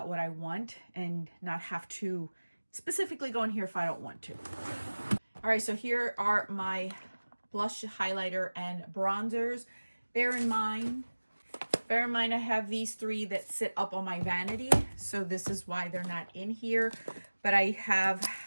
what I want and not have to specifically go in here if I don't want to. All right, so here are my blush, highlighter, and bronzers. Bear in mind I have these 3 that sit up on my vanity, so this is why they're not in here. But I have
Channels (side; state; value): both; inverted; correlation -1.00